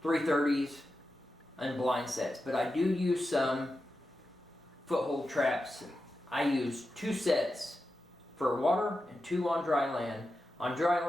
330s and blind sets, but I do use some foothold traps. I use 2 sets for water and 2 on dry land. On dry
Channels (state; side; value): normal; both; correlation 0.91